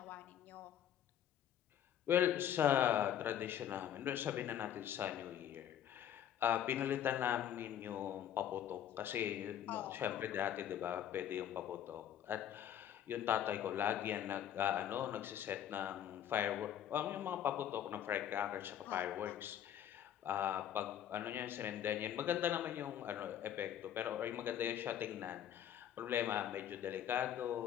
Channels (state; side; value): quieter; right; 10.4 dB